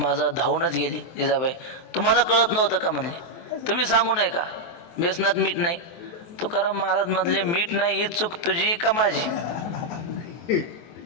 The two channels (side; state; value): right; late; 23 ms